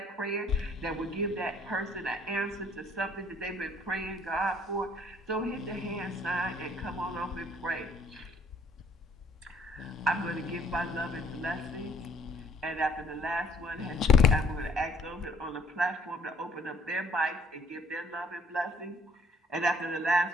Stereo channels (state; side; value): normal; both; correlation 0.60